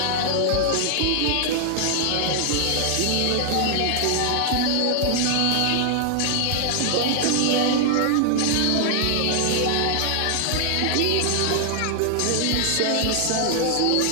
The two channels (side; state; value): both; different; correlation 0.00